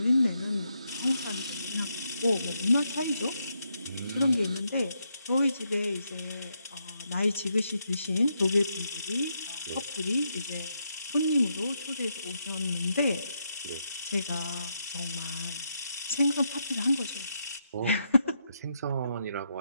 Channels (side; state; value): both; inverted; correlation -0.80